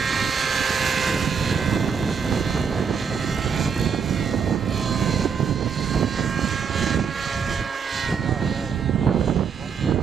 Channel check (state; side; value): quieter; left; 6.3 dB